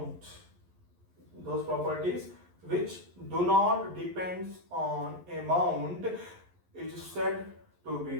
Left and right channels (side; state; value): left; late; 11 ms